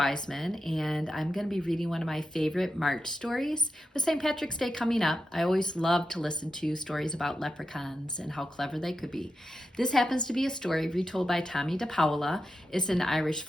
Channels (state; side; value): normal; both; correlation 0.89